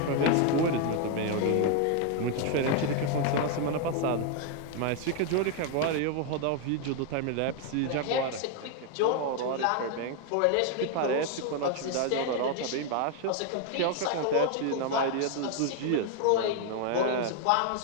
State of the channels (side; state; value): both; different; correlation 0.00